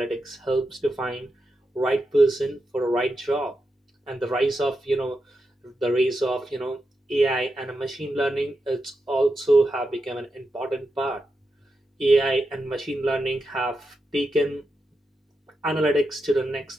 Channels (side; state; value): both; normal; correlation 0.87